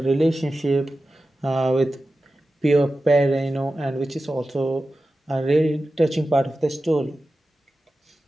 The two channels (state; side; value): normal; both; correlation 0.94